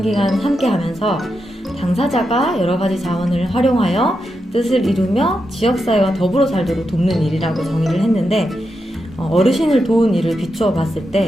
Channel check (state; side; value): normal; both; correlation 0.86